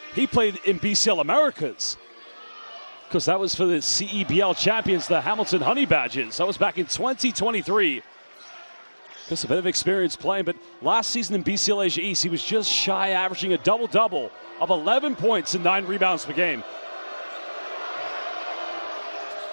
He played in BCL Americas, because that was for the CEBL champions, the Hamilton Honey Badgers. That was back in 2023. Just a bit of experience playing, but last season in BCL Asia East, he was just shy, averaging a double-double of 11 points and 9 rebounds per game.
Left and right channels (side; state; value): both; inverted; correlation -1.00